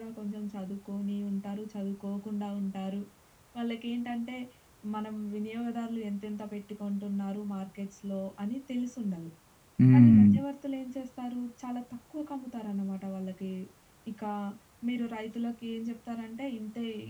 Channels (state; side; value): identical; both; correlation 1.00